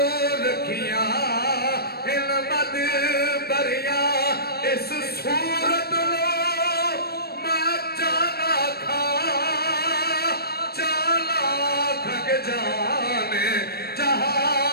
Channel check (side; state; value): right; late; 0.46 ms